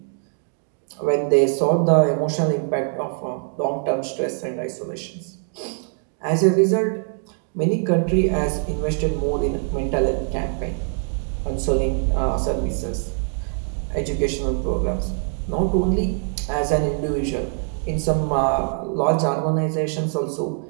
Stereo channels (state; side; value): silent; left; 56 dB below the other